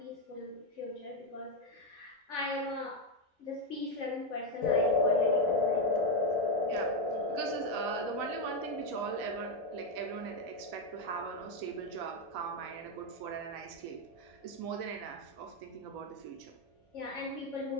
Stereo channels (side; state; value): both; normal; correlation 0.04